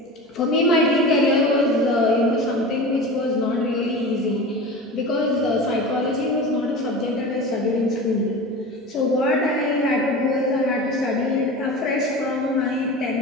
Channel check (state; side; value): normal; both; correlation 0.31